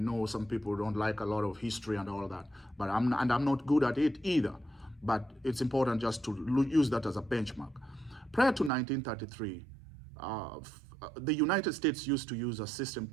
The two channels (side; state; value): left; drops out; at 8.7 s